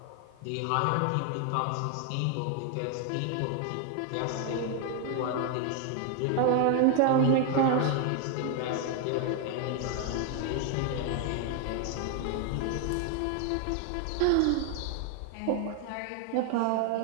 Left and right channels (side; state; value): both; different; correlation 0.00